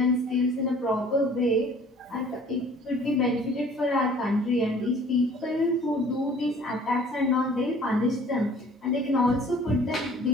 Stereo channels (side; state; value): both; normal; correlation 0.52